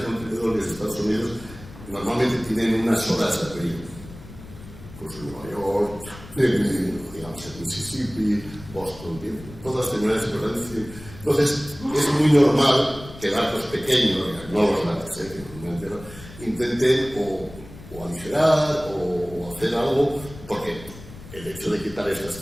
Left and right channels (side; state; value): left; noise; rumble, 17 dB below the sound